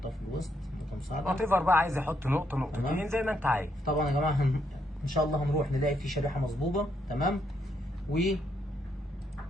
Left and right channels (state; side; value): normal; both; correlation 0.76